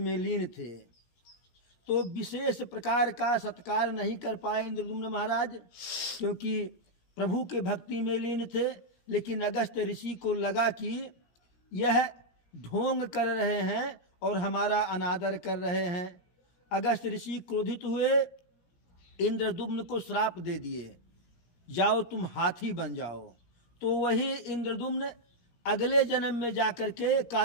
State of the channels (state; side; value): late; right; 17 ms